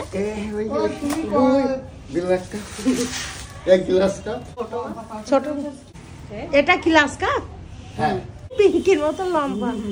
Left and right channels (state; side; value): identical; both; correlation 1.00